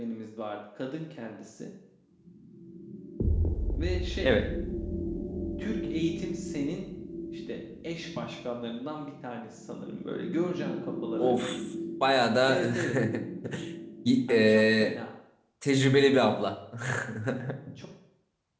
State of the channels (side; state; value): both; identical; correlation 1.00